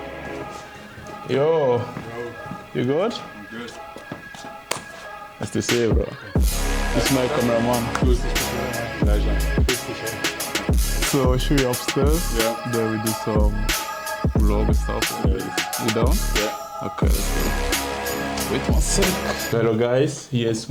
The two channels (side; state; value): both; identical; correlation 1.00